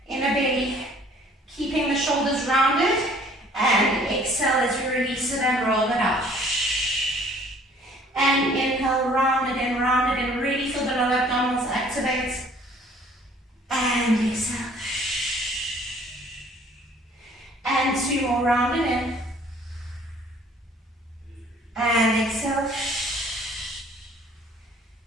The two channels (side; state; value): both; normal; correlation 0.56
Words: belly, keeping the shoulders rounded, and exhale as we release it and roll it out. And inhale, round it in, really feel the lower abdominals activate. And exhale. And 2 more, round it in. And exhale.